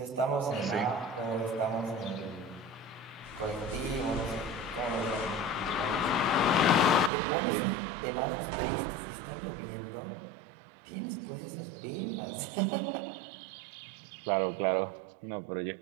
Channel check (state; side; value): drops out; left; at 7.1 s